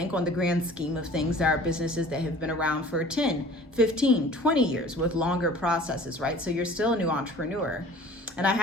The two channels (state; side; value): normal; both; correlation 0.47